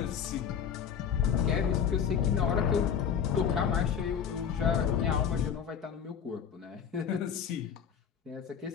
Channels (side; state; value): right; quieter; 7.7 dB